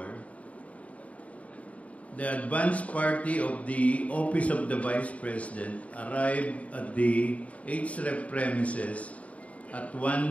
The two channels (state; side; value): late; right; 0.067 ms